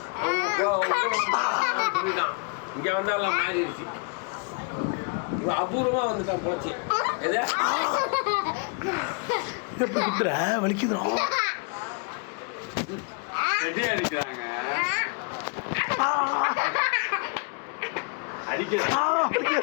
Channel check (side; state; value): right; quieter; 34.3 dB